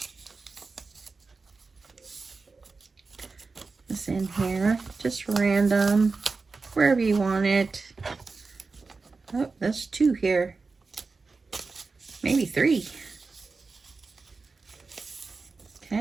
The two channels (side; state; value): left; quieter; 4.2 dB